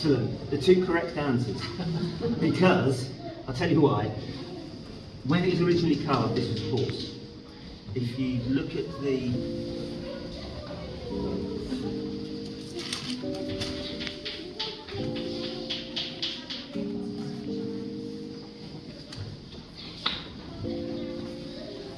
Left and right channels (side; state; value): both; identical; correlation 1.00